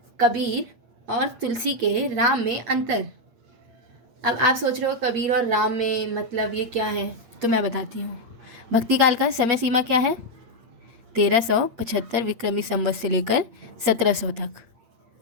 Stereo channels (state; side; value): late; left; 8.6 ms